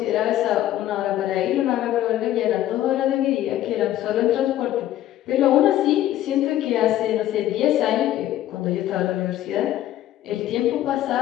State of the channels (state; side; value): quieter; right; 13.2 dB